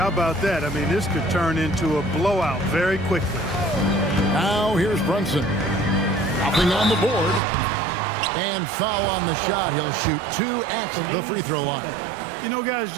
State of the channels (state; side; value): drops out; left; at 7.4 s